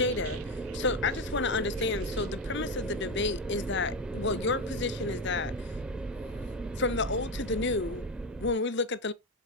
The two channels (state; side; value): normal; both; correlation 0.13